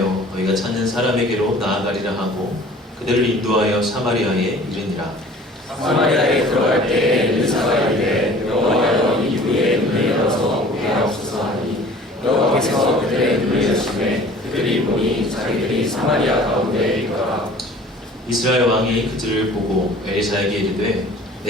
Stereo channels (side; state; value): both; normal; correlation 0.48